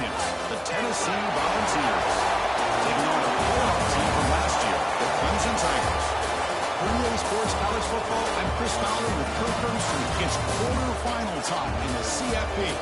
the Tennessee Volunteers, taking on a playoff team from last year, the Clemson Tigers. For EA Sports College Football, I'm Chris Fowler with Kirk Herbstreit. It's quarterfinal time in the CFB,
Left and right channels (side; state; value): both; identical; correlation 1.00